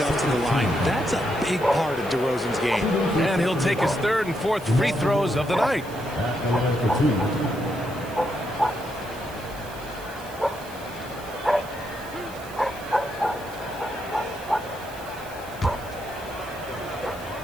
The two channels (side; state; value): right; noise; hiss, 19 dB below the sound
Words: to the line. That's a big part of DeRozan's game. And he'll take his third and fourth free throws of the night.